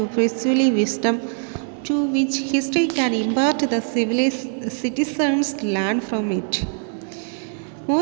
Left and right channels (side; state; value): left; silent; 61 dB below the other